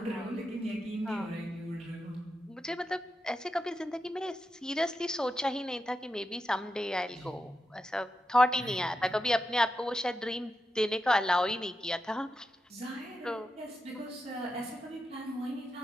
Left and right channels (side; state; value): both; normal; correlation 0.87